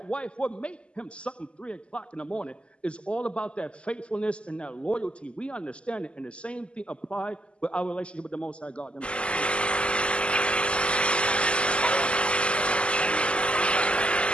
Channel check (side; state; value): right; late; 0.054 ms